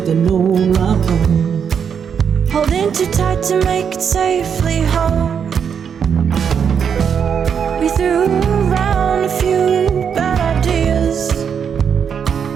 an old rock home, holding too tight to make it safely home. We threw around a few bad ideas.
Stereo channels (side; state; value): left; quieter; 7.3 dB